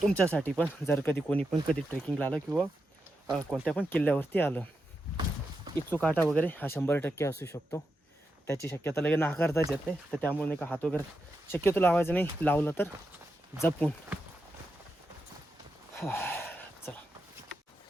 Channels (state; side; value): normal; both; correlation 0.87